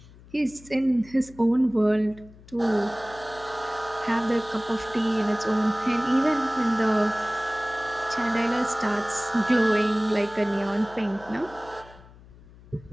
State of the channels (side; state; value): left; noise; hum, 22 dB below the sound